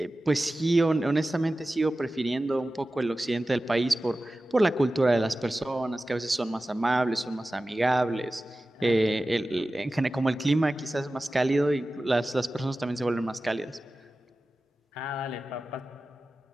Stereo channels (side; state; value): both; normal; correlation 0.95